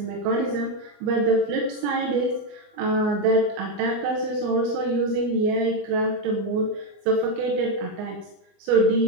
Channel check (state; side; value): late; left; 24 ms